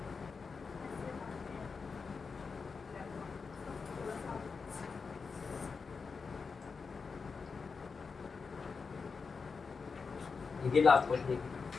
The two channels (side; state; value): right; quieter; 5.0 dB